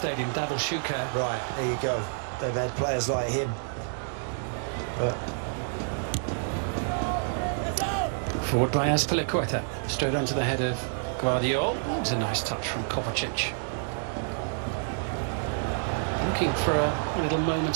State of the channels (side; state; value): left; silent; digital silence